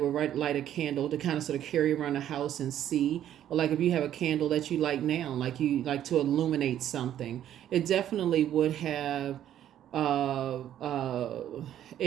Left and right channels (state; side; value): quieter; left; 11.1 dB